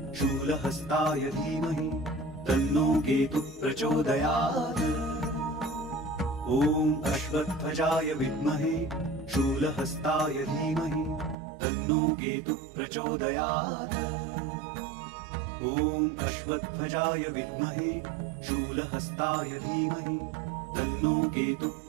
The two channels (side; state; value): left; drops out; at 11.4 s